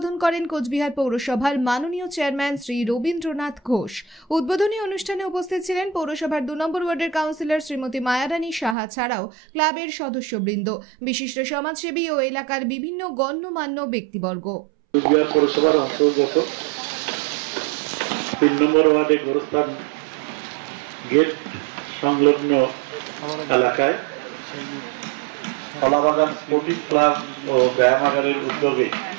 করেন কোচবিহার পৌরসভার মাননীয় চেয়ারম্যান শ্রী রবীন্দ্রনাথ ঘোষ। উদ্বোধনী অনুষ্ঠানে উপস্থিত ছিলেন পৌরসভার 2 নম্বর ওয়ার্ডের কাউন্সিলর শ্রীমতী মায়ারানী সাহা ছাড়াও ক্লাবের সদস্যবৃন্দ, বিশিষ্ট সমাজসেবী ও এলাকার বিভিন্ন গণ্যমান্য ব্যক্তিবর্গ। কোচবিহার পৌরসভার অন্তর্গত 3 নম্বর ওয়ার্ডে গোরস্থান গেট সংলগ্ন এলাকায় কলাবাগান স্পোর্টিং ক্লাব ও ব্যায়ামাগারের উদ্যোগে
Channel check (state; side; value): drops out; left; at 8.8 s